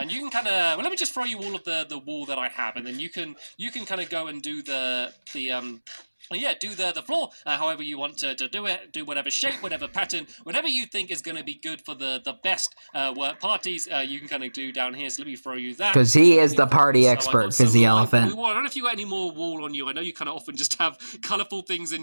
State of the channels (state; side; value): inverted; both; correlation -1.00